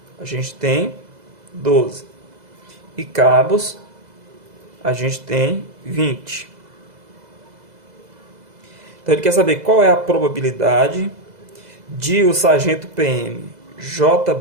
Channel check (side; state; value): left; late; 2.0 ms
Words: a gente tem 12. E cabos, a gente tem 20. Então, ele quer saber qual é a probabilidade de o sargento PM